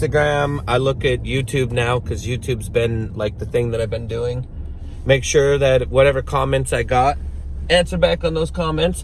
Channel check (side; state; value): both; identical; correlation 1.00